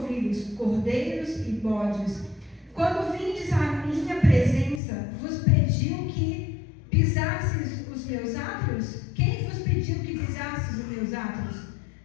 cordeiros e bodes. Quando vindes à minha presença, vos pediu que pisasses os meus átrios? Quem vos pediu que pisasses os meus átrios?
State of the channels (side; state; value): right; drops out; at 4.8 s